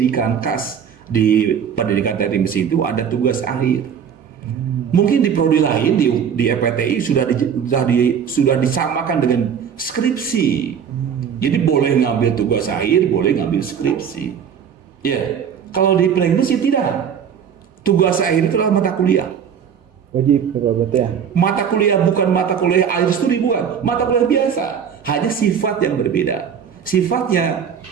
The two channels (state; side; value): quieter; left; 7.7 dB